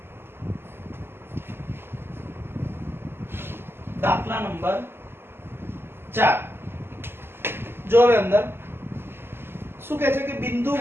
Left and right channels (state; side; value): late; left; 0.11 ms